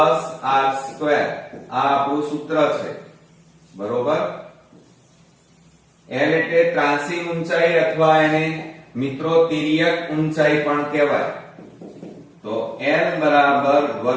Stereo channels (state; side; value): identical; both; correlation 1.00